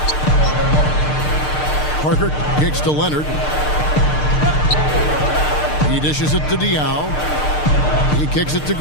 Parker kicks to Leonard. He dishes it to Diaw. He kicks it to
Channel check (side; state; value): right; late; 6.6 ms